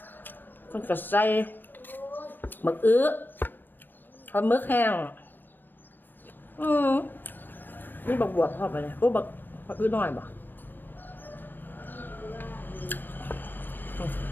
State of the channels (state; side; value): late; right; 0.092 ms